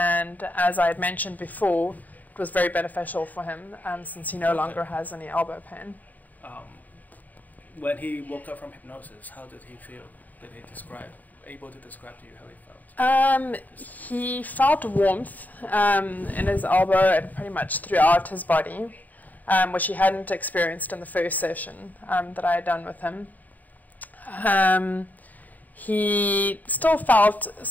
as I had mentioned before, it was very beneficial for him since he no longer has any elbow pain. When he woke up from hypnosis, how did he feel? Did he able to describe to you how he felt? He felt warmth in his elbow and pretty much throughout his body, which he hadn't experienced in the first session that I had done with him. He still felt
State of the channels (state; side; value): late; right; 0.081 ms